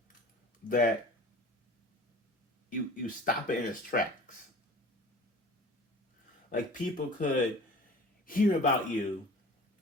that you stop it in its tracks. Like people could hear about you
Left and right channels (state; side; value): normal; both; correlation 0.42